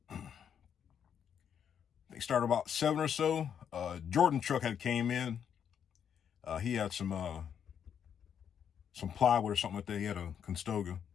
They started about 7 or so. Jordan truck had came in. He had some plywood or something like that. He had a Constoga.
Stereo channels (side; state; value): right; quieter; 8.2 dB